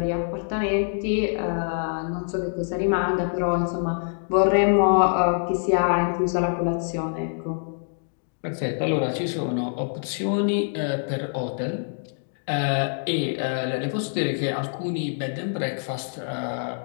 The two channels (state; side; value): silent; right; digital silence